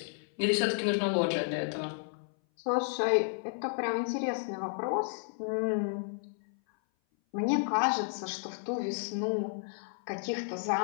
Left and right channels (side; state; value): right; silent; 56 dB below the other